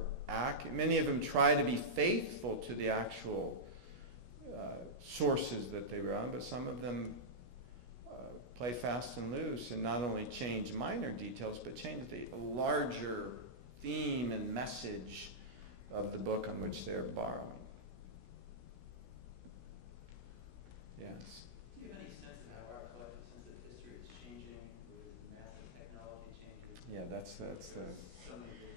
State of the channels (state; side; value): late; left; 16 ms